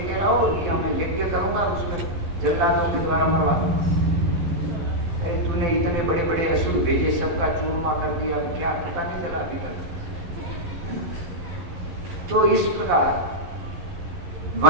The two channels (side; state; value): left; late; 12 ms